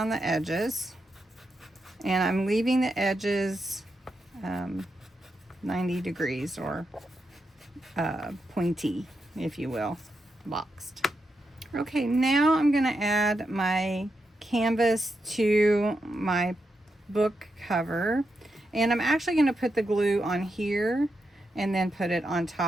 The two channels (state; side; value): normal; both; correlation 0.85